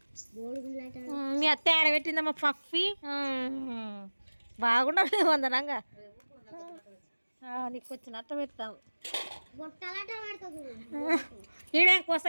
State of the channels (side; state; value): both; inverted; correlation -1.00